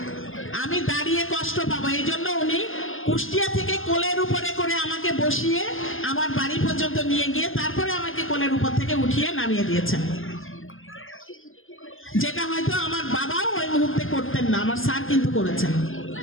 আমি দাঁড়িয়ে কষ্ট পাবো, এই জন্য উনি কুষ্টিয়া থেকে কোলের উপরে করে আমাকে বসিয়ে আমার বাড়ি পর্যন্ত নিয়ে গিয়ে তারপরে আমাকে কোলের উপর থেকে উঠিয়ে নামিয়ে দিয়েছেন, যেটা হয়তো আমার বাবাও ওই মুহূর্তে করতেন না, আমার স্যার কিন্তু করেছেন।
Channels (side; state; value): right; late; 0.59 ms